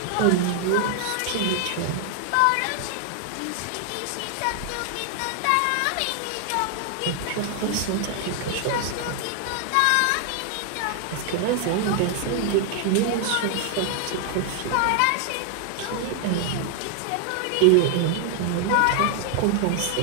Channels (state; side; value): different; both; correlation 0.00